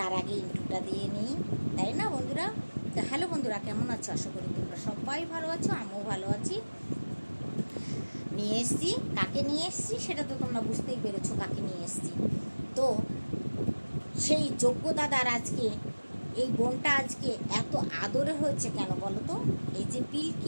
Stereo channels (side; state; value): both; inverted; correlation -1.00